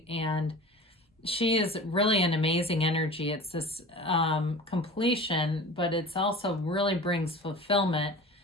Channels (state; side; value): normal; both; correlation 0.37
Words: And she is really an amazing energy. It's this completion, but it's also really brings fulfillment,